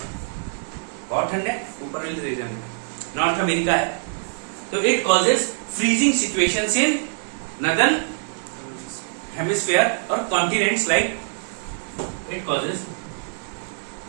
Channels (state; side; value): silent; left; 63 dB below the other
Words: बहुत ठंड है, ऊपर वाले रीजन में। नॉर्थ अमेरिका है, तो it causes freezing situations in northern hemisphere और continents, like it causes